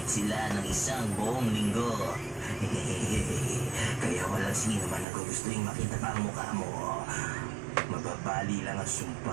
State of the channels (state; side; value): drops out; left; at 5.1 s